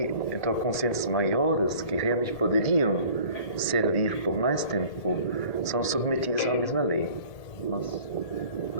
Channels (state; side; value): late; right; 1.8 ms